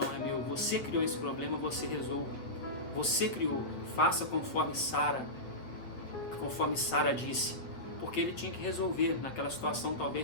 é meu. Você criou esse problema, você resolve. Você criou, faça conforme Sara disse. Porque ele tinha que resolver naquela situação,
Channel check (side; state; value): right; late; 8.2 ms